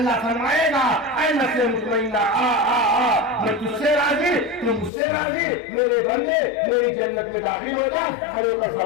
فرمائے گا اے نفس مطمئنہ آ آ آ، میں تجھ سے راضی، تو مجھ سے راضی، میرے بندے میری جنت میں داخل ہو جا، کھڑے ہو کر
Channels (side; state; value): right; drops out; at 4.9 s